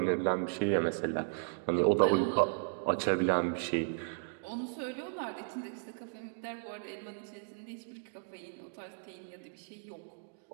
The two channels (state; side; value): silent; left; digital silence